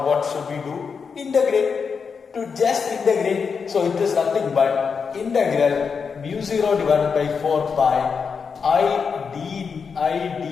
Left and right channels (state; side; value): quieter; right; 5.8 dB